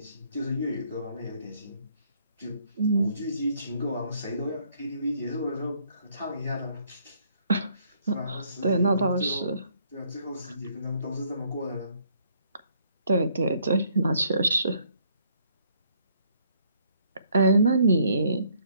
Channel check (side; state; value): both; inverted; correlation -0.66